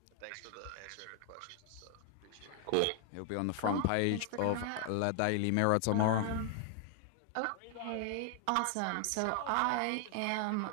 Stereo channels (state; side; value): different; both; correlation 0.00